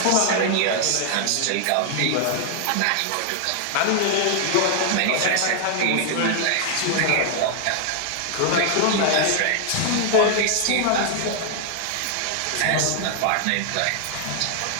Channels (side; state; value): both; different; correlation 0.00